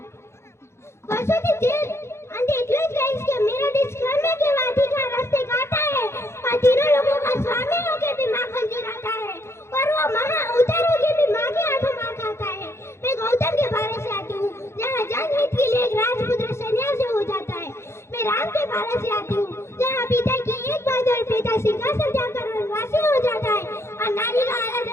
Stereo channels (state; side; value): late; right; 0.13 ms